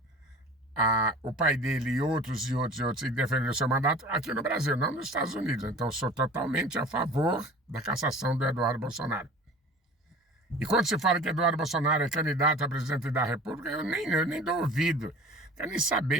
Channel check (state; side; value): normal; both; correlation 0.41